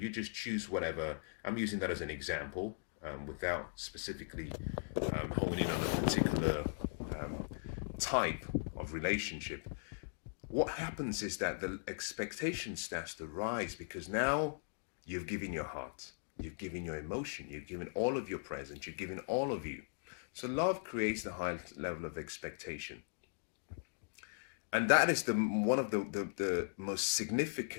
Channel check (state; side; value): silent; right; digital silence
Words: just choose whatever. I'm using that as an example without specifically honing in on a particular type of relationship. What happens is that the expectation starts to rise, because now you've given your heart, you've given your emotion, you've given all of your presence, you've given all of you. So love creates the highest level of expectation. And that is one of the most